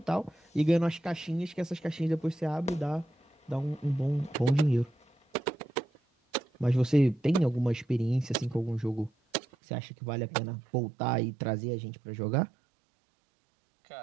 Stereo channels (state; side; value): drops out; left; at 9.4 s